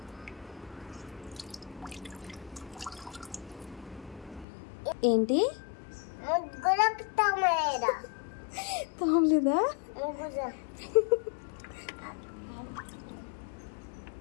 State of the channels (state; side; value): drops out; right; at 4.5 s